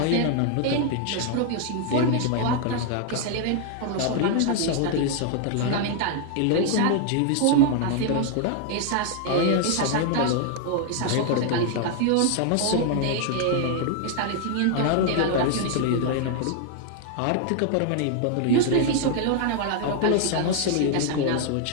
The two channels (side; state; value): both; different; correlation 0.00